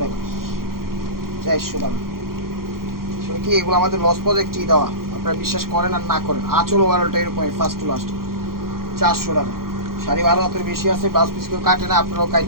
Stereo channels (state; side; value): late; left; 0.92 ms